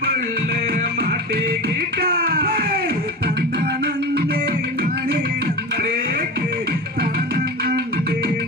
புள்ள மாட்டிக்கிட்டா தந்தனந்தே நானே நந்தரேக்கு தனனந்தே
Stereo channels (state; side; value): normal; both; correlation 0.28